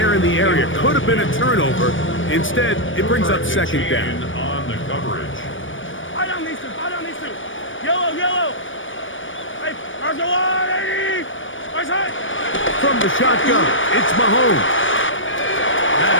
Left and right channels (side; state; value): right; late; 0.57 ms